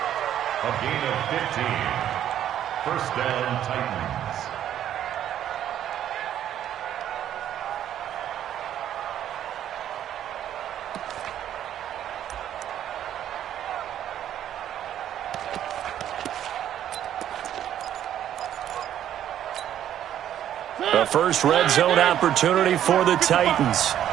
gain of 15. First down, Titans. The first red zone opportunity for the Titans.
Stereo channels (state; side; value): quieter; left; 10.9 dB